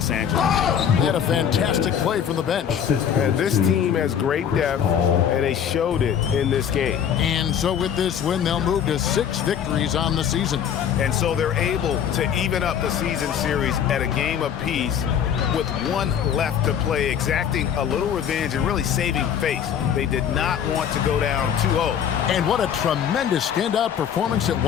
Angeles. They had a fantastic play from the bench. This team has great depth, and they showed it in this game. And so with this win, they'll move to 6 victories on the season. And so they're able to even up the season series at a game apiece with 1 left to play, exacting a little revenge and really saving face. They did not want to go down 2-0. And what a tremendous standout performance it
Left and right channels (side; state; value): right; quieter; 8.6 dB